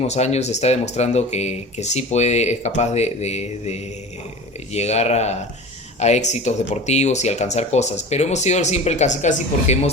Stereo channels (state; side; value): normal; both; correlation 0.35